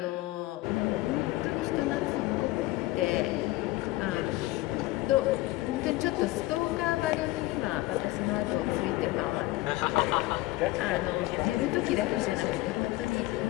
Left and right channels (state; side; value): quieter; right; 18.6 dB